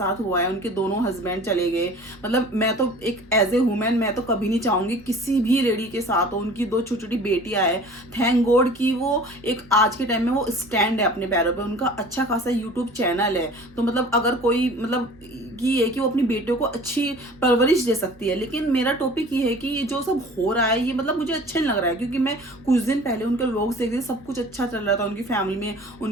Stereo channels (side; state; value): both; normal; correlation 0.45